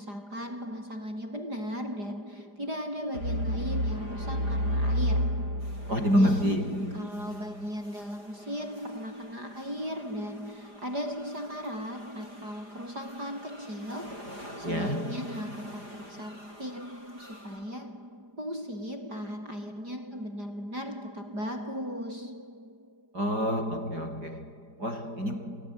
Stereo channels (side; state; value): left; late; 4.9 ms